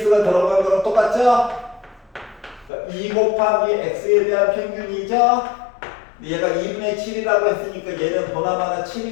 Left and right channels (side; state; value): right; drops out; at 2.7 s